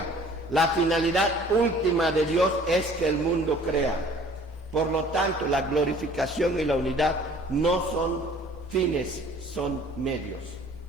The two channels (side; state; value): both; normal; correlation 0.51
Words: la finalidad última de Dios es que el mundo crea. Por lo tanto, la glorificación y la unidad no son fines, son medios.